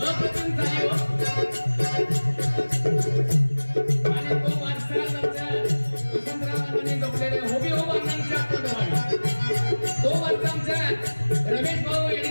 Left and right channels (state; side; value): inverted; both; correlation -1.00